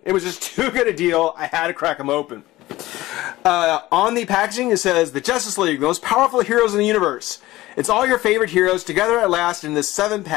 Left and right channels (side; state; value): right; quieter; 17.5 dB